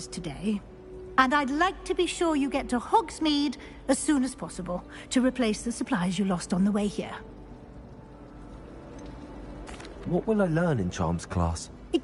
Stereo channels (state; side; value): identical; both; correlation 1.00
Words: today. And I'd like to be sure you get to Hogsmeade as soon as possible to replace the supplies you lost on the way here. What will I learn in Charms class?